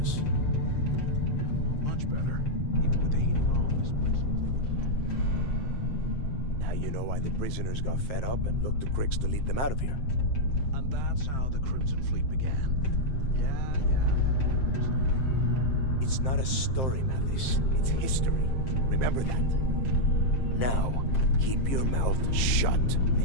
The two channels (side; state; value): right; late; 7.6 ms